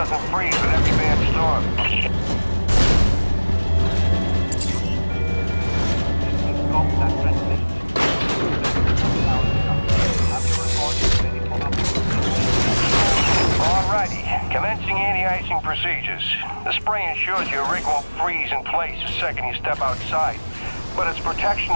freeze with every bad storm. Alrighty, Commencing anti-icing procedures. The spray ensures your rig won't freeze in place the second you step outside, but its protection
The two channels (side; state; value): both; inverted; correlation -1.00